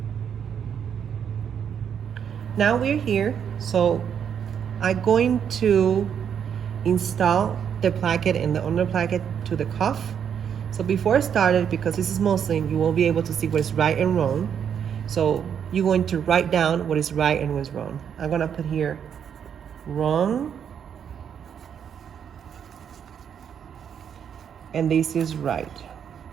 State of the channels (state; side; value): quieter; left; 8.1 dB